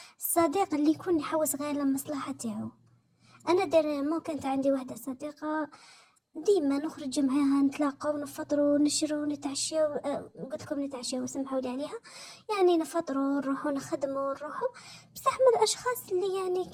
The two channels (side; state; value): both; identical; correlation 1.00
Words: الصديق اللي يكون يحوس غير للمصلحة تاعو. انا ديريمون كانت عندي واحده صديقه ديما نخرج معاها نتلاقاو نفطروا نشروا نتعشاو، قلت لكم نتعشاو سمحوا لي عليها. يعني نفطروا نروحوا نخدموا نروحوا. بصح من الاشخاص اللي يعني